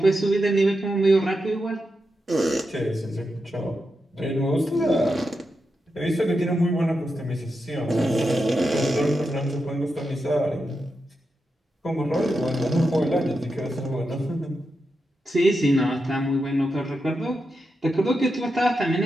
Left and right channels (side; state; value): both; normal; correlation 0.87